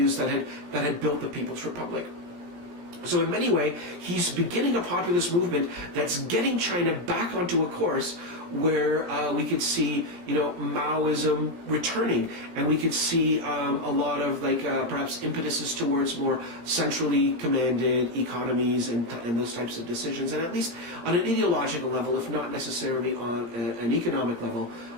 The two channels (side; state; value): left; late; 17 ms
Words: that had built the People's Republic. So in many ways, he's beginning a populist movement that's getting China back onto a course where we could see, Maoism returning, and we could see a lot of perhaps impetuses towards more centrally commanded economies and those types of decisions, and at least on an ideological level, if not necessarily on an economic level,